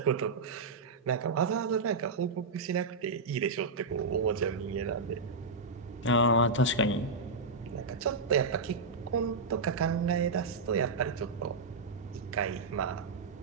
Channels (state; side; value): quieter; left; 3.6 dB